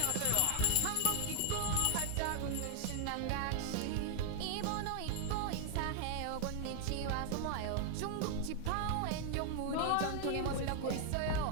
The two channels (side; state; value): both; different; correlation 0.00